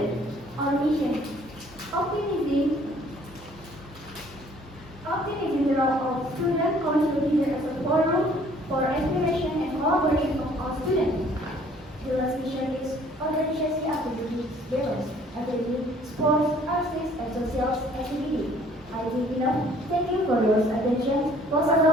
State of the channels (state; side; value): normal; both; correlation 0.58